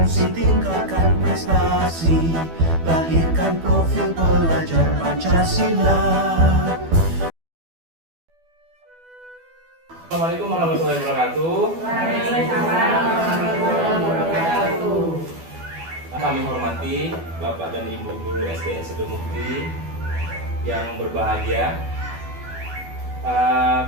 tingkatkan prestasi. Lahirkan profil pelajar Pancasila. Assalamualaikum warahmatullahi wabarakatuh. Waalaikumsalam warahmatullahi wabarakatuh. Kami hormati Bapak dan Ibu Guru SDN Sidemukti yang berbahagia.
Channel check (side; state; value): left; late; 12 ms